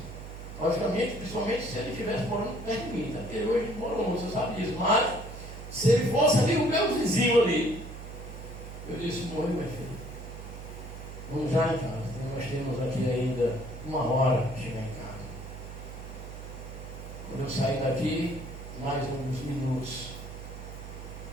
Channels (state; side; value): noise; right; hum, 11 dB below the sound